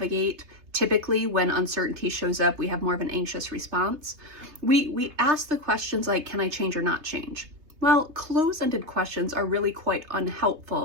typically when uncertainty shows up, we have more of an anxious response. We ask the questions like, can I change or not change? Well, closed-ended questions are really quite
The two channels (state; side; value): late; left; 3.3 ms